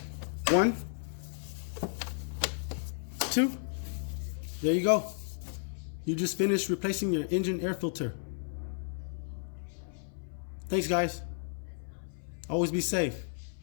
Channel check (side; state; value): right; silent; 56 dB below the other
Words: 1, 2. There you go. You just finished replacing your engine air filter. Thanks, guys. Always be safe.